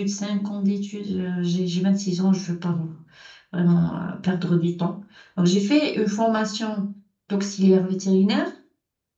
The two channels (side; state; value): both; identical; correlation 1.00